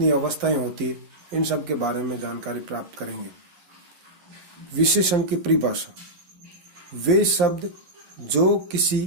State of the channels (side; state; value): left; late; 11 ms